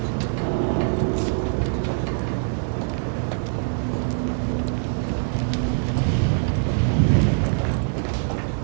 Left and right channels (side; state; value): left; silent; 58 dB below the other